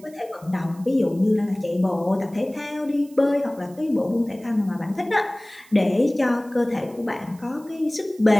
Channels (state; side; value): noise; right; hiss, 26 dB below the sound